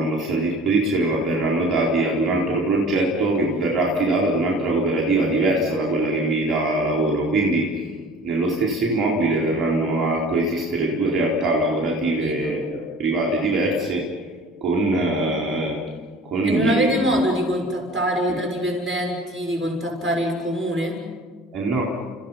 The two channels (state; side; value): normal; both; correlation 0.44